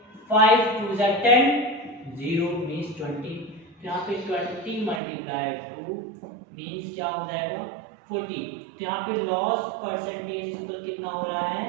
5 2 से 10, 0 मीन्स 20, तो यहाँ पे 20 मल्टीप्लाई 2 मीन्स क्या हो जाएगा 40। तो यहाँ पे लॉस परसेंटेज पर कितना हो रहा है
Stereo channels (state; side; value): drops out; left; at 5.0 s